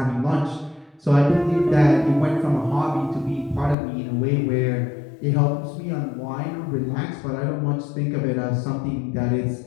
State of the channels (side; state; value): right; drops out; at 3.8 s